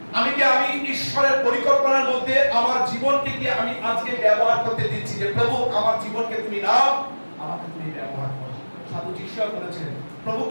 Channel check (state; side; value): inverted; both; correlation -1.00